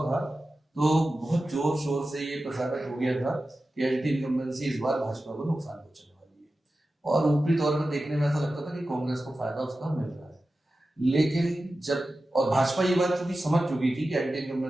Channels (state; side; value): normal; both; correlation 0.94